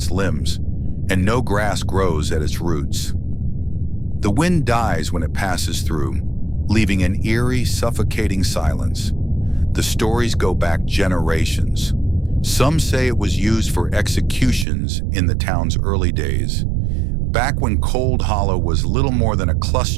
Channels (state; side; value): drops out; left; at 14.7 s